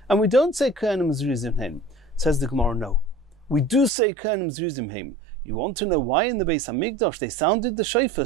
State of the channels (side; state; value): left; drops out; at 3.9 s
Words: and we don't say Kohanim zrizim heim. Says the Gemara, no. We do say Kohanim zrizim heim. You want to know why in the Beis HaMikdash they sounded the shofar